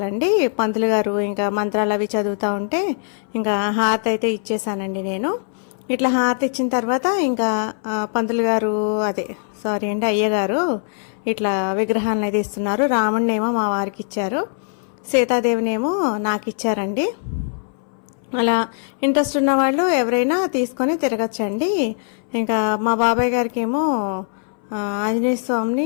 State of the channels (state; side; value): silent; right; 62 dB below the other